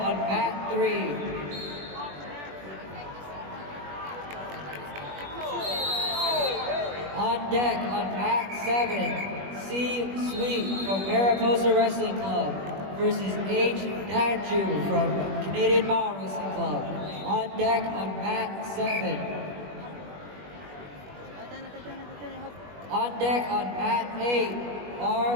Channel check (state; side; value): late; left; 21 ms